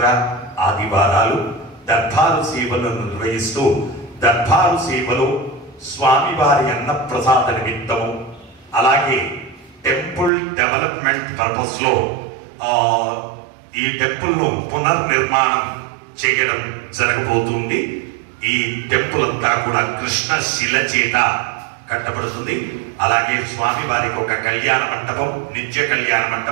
ఆదివారాలు దర్బారు సేవలను నిర్వహిస్తూ దర్బారు సేవలో స్వామివారి అన్నప్రసాద నిమిత్తము అలాగే టెంపుల్ డెవలప్మెంట్ పర్పస్ లో ఈ టెంపుల్ ను పునర్నిర్మాణం చేయడం జరగబోతుంది. ఈ టెంపుల్ అంతా కూడా కృష్ణ శిల చేత కట్టబడుతుంది. అలాగే స్వామివారికి ఒక కళ్యాణ మంటపం, నిత్య కళ్యాణ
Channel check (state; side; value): drops out; left; at 10.3 s